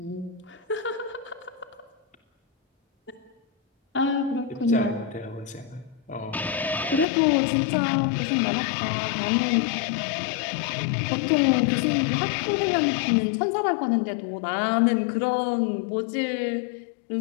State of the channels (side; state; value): right; drops out; at 7.1 s